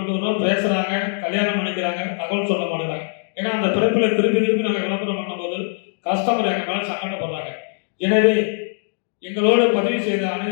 வரோம். பேசுகிறாங்க, கல்யாணம் பண்ணிக்கிறாங்க, தகவல் சொல்ல மாட்டேங்கிறாங்க. ஏன்னா அந்த பிறப்பில் திருப்பி நாங்கள் விளம்பரம் பண்ணும்போது கஸ்டமர் எங்கள் மேலே சங்கடப்படுறாங்க. எனவே எங்களோடு பதிவு செய்த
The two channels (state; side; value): silent; right; digital silence